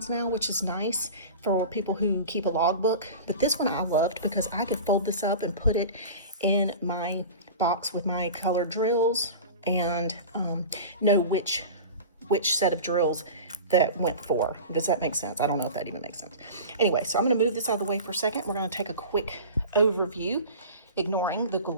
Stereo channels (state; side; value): inverted; both; correlation -0.34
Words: now, which is nice for people who keep a logbook, but this one I loved because I could fold this up and put it in my box with my colored drills and know which set of drills that went for. Does that make sense? I don't know if that even makes sense. Anyway, so I'm going to move this out of the way for a second. We're going to take a quick overview, ignoring the